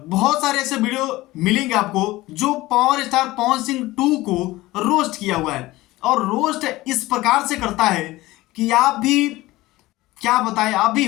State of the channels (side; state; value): right; quieter; 18.6 dB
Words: बहुत सारे ऐसे वीडियो मिलेंगे आपको जो पावर स्टार पवन सिंह 2 को रोस्ट किया हुआ है, और रोस्ट इस प्रकार से करता है कि आप भी क्या बताएं, आप भी